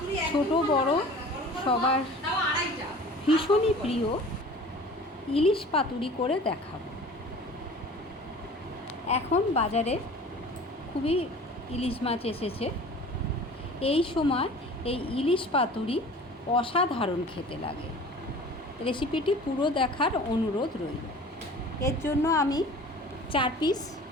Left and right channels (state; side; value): normal; both; correlation 0.43